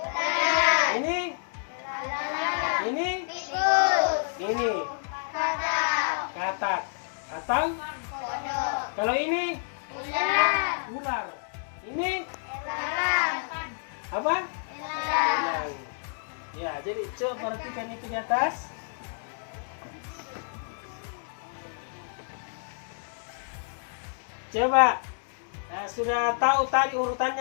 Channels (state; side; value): silent; right; digital silence